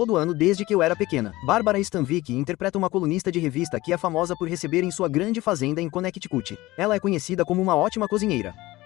ano desde que eu era pequena. Bárbara Stanwyck interpreta uma colunista de revista que é famosa por receber em sua grande fazenda em Connecticut. Ela é conhecida como uma ótima cozinheira.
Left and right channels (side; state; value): right; quieter; 18.9 dB